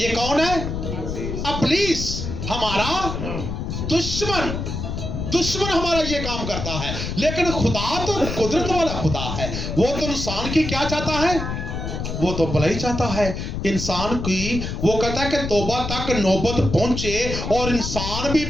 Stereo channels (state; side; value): noise; left; rumble, 4 dB below the sound